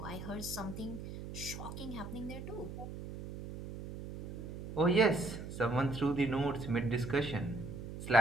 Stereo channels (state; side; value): noise; right; hum, 9 dB below the sound